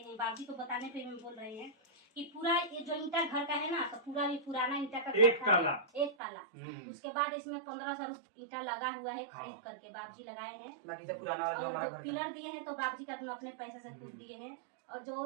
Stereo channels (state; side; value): drops out; left; at 6.2 s